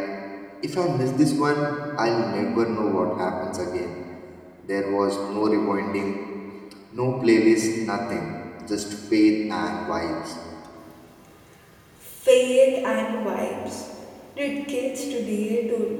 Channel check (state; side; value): identical; both; correlation 1.00